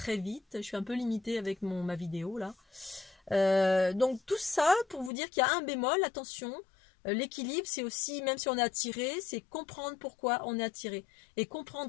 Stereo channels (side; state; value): right; drops out; at 5.1 s